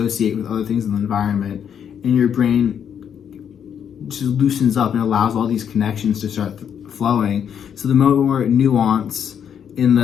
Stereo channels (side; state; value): right; quieter; 8.3 dB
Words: with other things in the environment. And your brain just loosens up and allows all these connections to start flowing. So the more nuance in